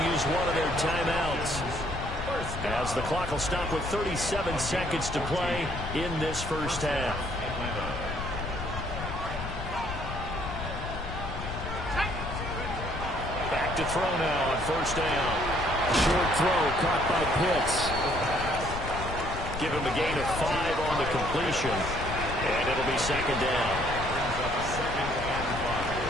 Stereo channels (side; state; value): left; noise; rumble, 7 dB below the sound